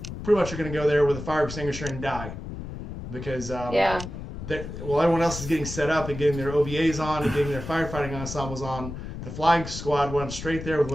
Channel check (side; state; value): left; noise; rumble, 9 dB below the sound